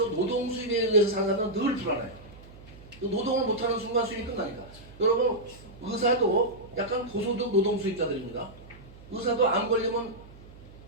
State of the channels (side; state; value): right; noise; hum, 20 dB below the sound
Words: 노동 수입에 의해서 사는 사람들은 늘 불안해요. 노동을 못하는 순간 수입이 끝나니까. 여러분 의사도 약간 고소득 노동 수입자들입니다. 의사도 안 걸리면